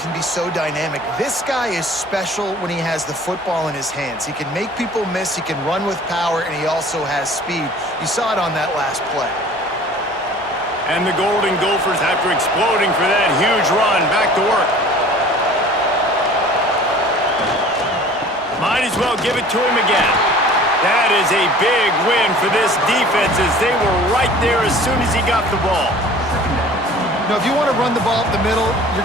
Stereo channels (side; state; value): both; normal; correlation 0.47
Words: be so dynamic. This guy is special when he has the football in his hands. He can make people miss, he can run with power, and he also has speed. You saw it on that last play. And the Golden Gophers, after exploding for that huge run, back to work. Might as well give it to him again. That is a big win for this defense as they were right there as soon as he got the ball. Now, if you want to run the ball up the middle,